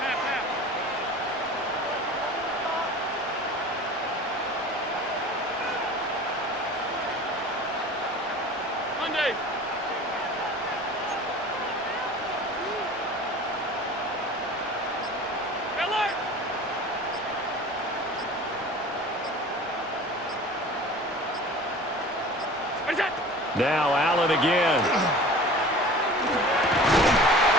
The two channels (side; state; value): both; normal; correlation 0.41